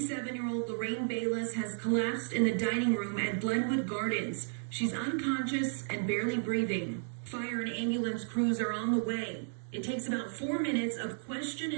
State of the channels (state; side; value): silent; left; digital silence